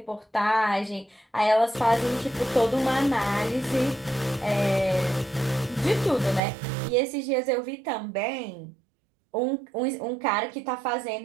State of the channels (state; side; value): drops out; left; at 6.4 s